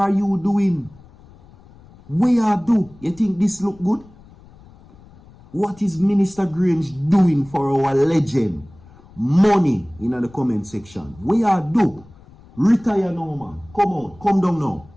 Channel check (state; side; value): noise; left; rumble, 24 dB below the sound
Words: you doing? Where you do? You think this look good? What is Minister Grange doing for our legend? Money in the comment section. Where you do? Retire now, man. Come on. Come down now.